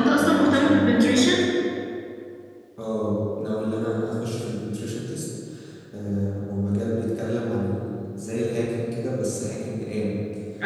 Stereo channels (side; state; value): both; identical; correlation 1.00